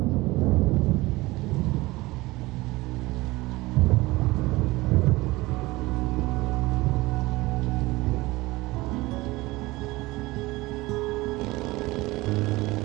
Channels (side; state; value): left; quieter; 20.6 dB